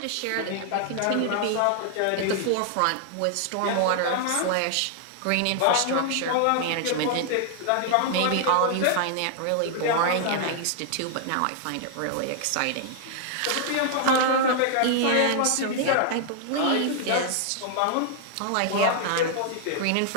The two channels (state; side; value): different; both; correlation 0.00